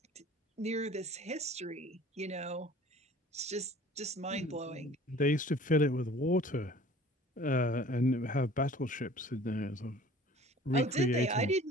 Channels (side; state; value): both; normal; correlation 0.48